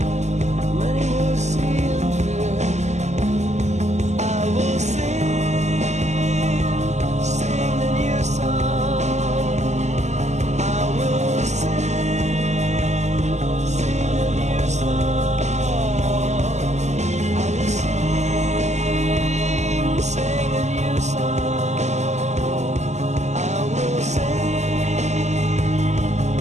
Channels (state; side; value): late; left; 0.33 ms